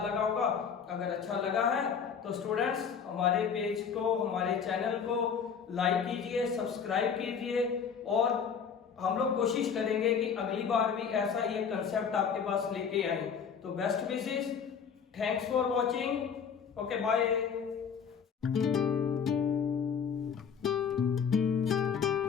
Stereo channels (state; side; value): quieter; right; 6.8 dB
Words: लगा होगा। अगर अच्छा लगा है तो स्टूडेंट्स हमारे पेज को, हमारे चैनल को लाइक कीजिए, सब्सक्राइब कीजिए, और हम लोग कोशिश करेंगे कि अगली बार भी ऐसा ही एक कंसेप्ट आपके पास लेके आए। तो best wishes, thanks for watching, okay bye.